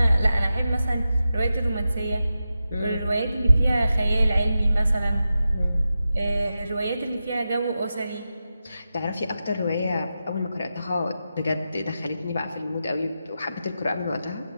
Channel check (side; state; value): both; inverted; correlation -0.91